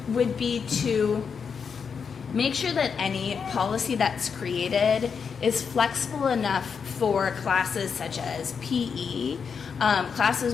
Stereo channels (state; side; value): quieter; right; 6.2 dB